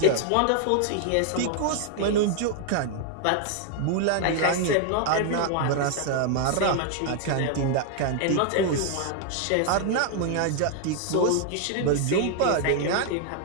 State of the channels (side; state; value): both; different; correlation 0.00